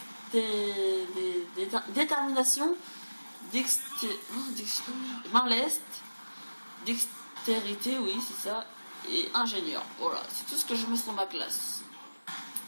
Détermination. Main leste. Dextérité, oui, c'est ça. Et ingénieur. Voilà, c'est tout ce que je mets sur ma classe.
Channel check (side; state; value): both; inverted; correlation -1.00